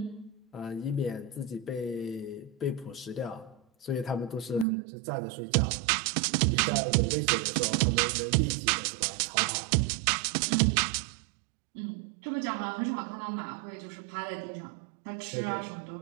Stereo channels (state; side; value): drops out; left; at 4.7 s